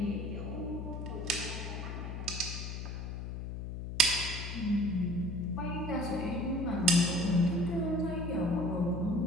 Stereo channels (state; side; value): noise; left; hum, 6 dB below the sound